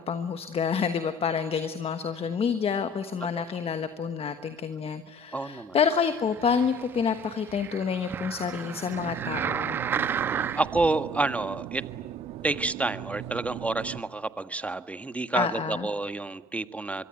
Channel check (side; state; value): both; normal; correlation 0.52